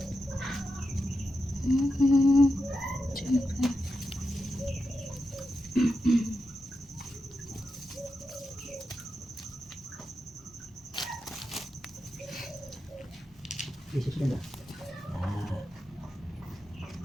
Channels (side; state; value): both; normal; correlation 0.88